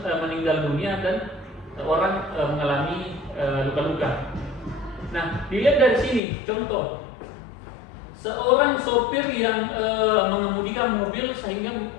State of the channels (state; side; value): drops out; right; at 6.2 s